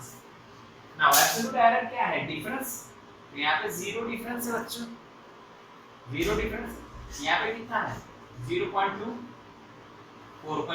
Now absolute error क्या है? डिफरेंस। तो यहाँ पे 0 डिफरेंस है बच्चों, 0 डिफरेंस। यहाँ पे कितना है? 0.2,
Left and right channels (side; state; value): both; identical; correlation 1.00